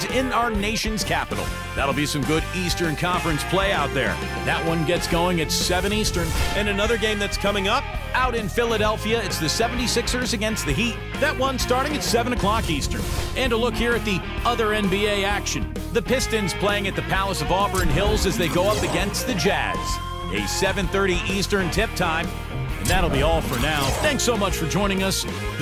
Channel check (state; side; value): identical; both; correlation 1.00